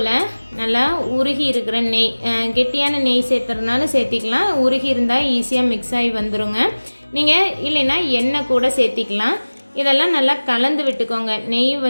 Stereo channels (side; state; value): both; inverted; correlation -1.00